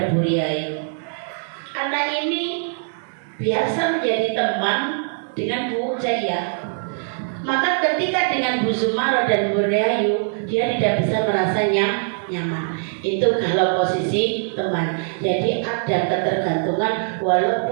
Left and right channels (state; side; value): silent; left; 64 dB below the other